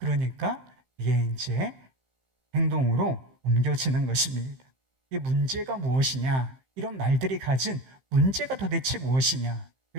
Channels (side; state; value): left; late; 15 ms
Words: 이게 이제 행동으로 옮겨지는 것입니다. 이 문제가 무엇이냐? 이런 말들이 가진 문제가 도대체 무엇이냐?